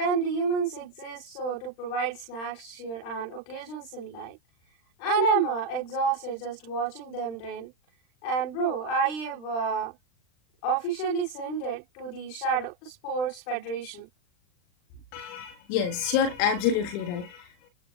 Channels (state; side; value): late; right; 40 ms